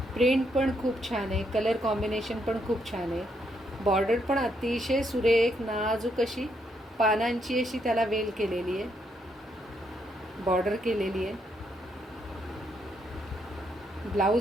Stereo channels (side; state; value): both; normal; correlation 0.76